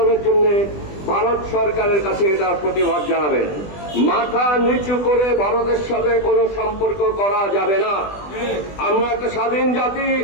জন্য ভারত সরকারের কাছে এটার প্রতিবাদ জানাবেন। মাথা নিচু করে ভারতের সাথে কোনো সম্পর্ক করা যাবে না। আমরা একটা স্বাধীন জাতি,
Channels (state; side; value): late; right; 20 ms